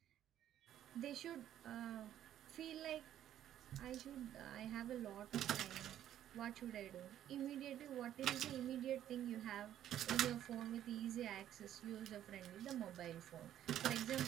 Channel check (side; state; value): left; quieter; 11.4 dB